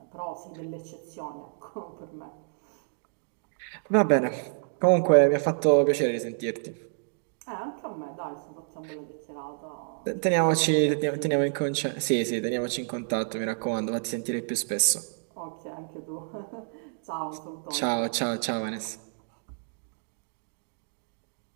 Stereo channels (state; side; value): silent; left; digital silence